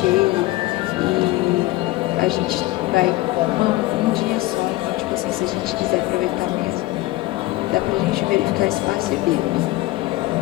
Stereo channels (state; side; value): quieter; right; 18.4 dB